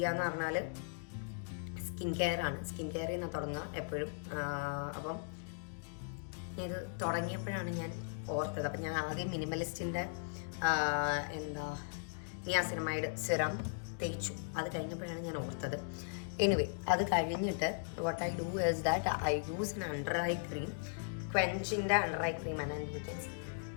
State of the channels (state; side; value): silent; right; digital silence